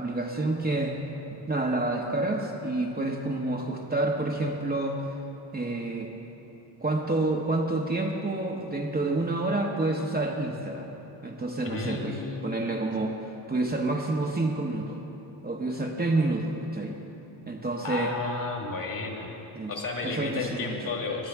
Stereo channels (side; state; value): both; normal; correlation 0.46